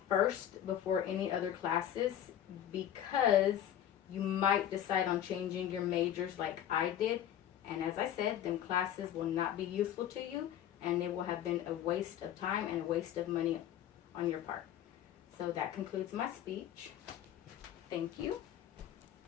first before any other classes, because you might decide on changing your majors like I did, and as I said, them classes will not be useful to you, and they will have been a waste of time and a waste of money on your part. So that concludes my speech. Thank you.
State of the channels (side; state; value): right; quieter; 10.9 dB